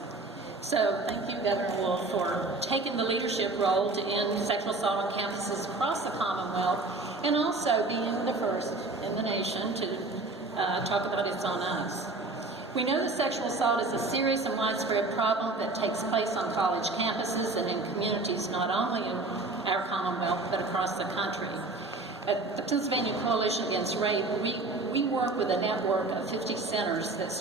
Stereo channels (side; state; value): left; quieter; 3.3 dB